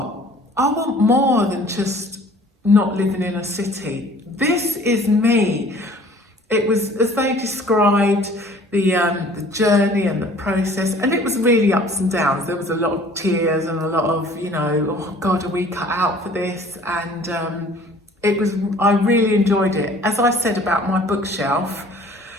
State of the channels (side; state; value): both; normal; correlation 0.51